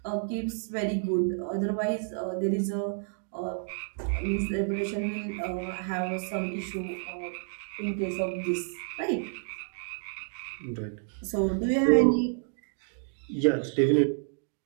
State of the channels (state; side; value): silent; left; digital silence